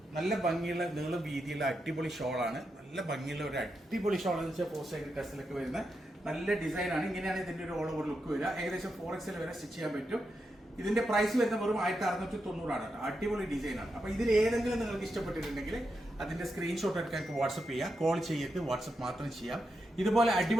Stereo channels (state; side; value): normal; both; correlation 0.85